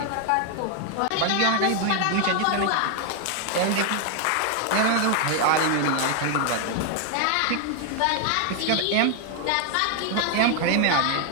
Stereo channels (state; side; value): different; both; correlation 0.01